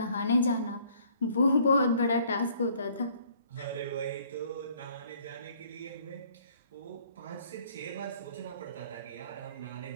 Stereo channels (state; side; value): inverted; both; correlation -0.60